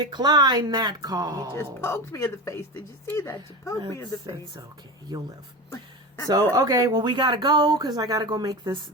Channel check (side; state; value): both; normal; correlation 0.25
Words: that call. You just poked me in the face. Did you see that? You poked me in the face. It's okay. You'll live. So, okay, well, we got to go because I got to go make this